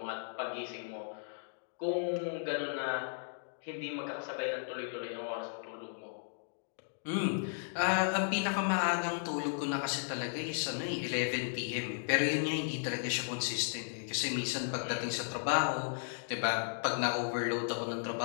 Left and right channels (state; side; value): silent; right; digital silence